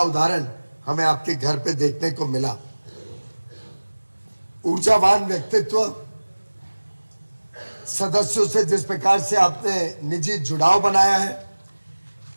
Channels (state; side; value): inverted; both; correlation -1.00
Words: उदाहरण हमें आपके घर पे देखने को मिला। ऊर्जावान व्यक्तित्व, सदस्यों से जिस प्रकार से आपने निजी जुड़ाव बनाया है,